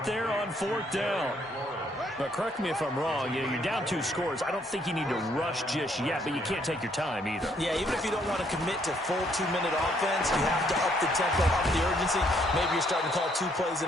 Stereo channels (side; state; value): both; normal; correlation 0.69